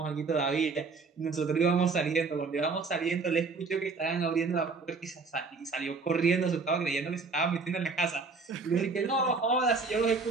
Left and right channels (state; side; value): quieter; left; 4.3 dB